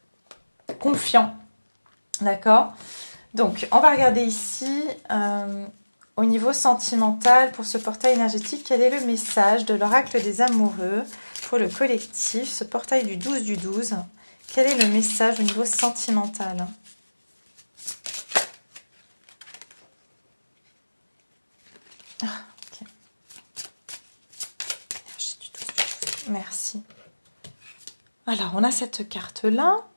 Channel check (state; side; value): inverted; both; correlation -1.00